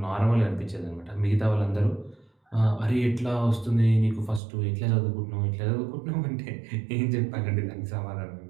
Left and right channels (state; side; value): drops out; left; at 4.4 s